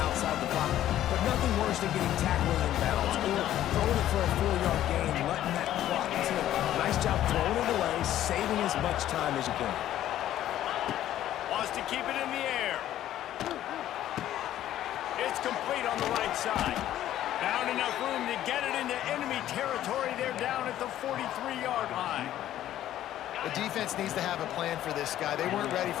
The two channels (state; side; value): quieter; right; 12.5 dB